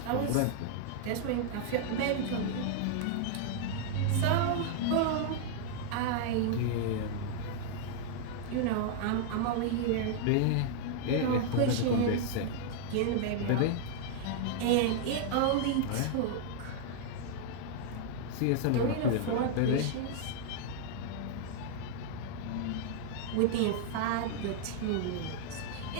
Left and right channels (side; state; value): both; different; correlation -0.01